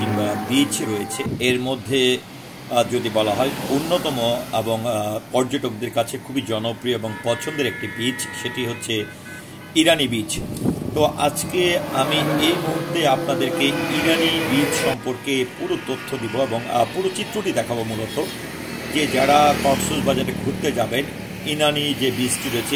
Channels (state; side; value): identical; both; correlation 1.00